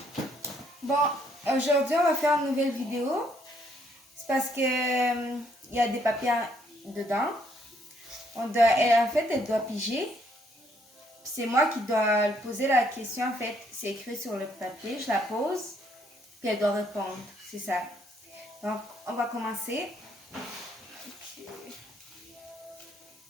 Bon, aujourd'hui on va faire une nouvelle vidéo. C'est parce que il y a des papiers dedans. En fait, elle doit piger. C'est moi qui dois poser la question. En fait, c'est écrit sur le papier. Je la pose, puis elle doit répondre. C'est ça. Donc, on va commencer.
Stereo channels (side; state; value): both; normal; correlation 0.69